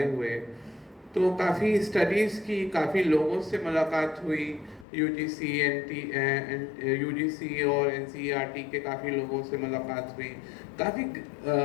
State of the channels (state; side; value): drops out; right; at 4.9 s